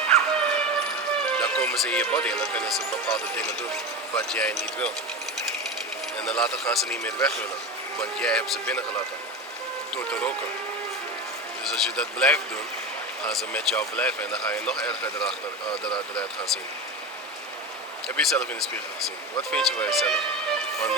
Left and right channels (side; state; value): both; normal; correlation 0.24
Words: Dan komen ze in je body en dan kunnen ze bepaalde dingen doen wat jij niet wil. En dan later gaan ze niet meer weg willen, want jij hebt ze binnengelaten door te roken. Dus als je dat blijft doen, gaan ze met jou blijven en dan ga je nog erger eruit gaan zien. Heb je jezelf in de spiegel gezien? Wat vind je van jezelf? Want de